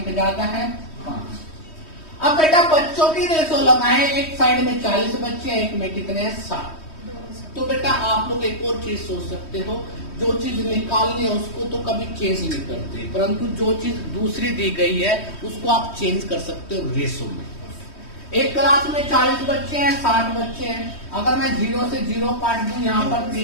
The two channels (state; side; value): late; right; 3.1 ms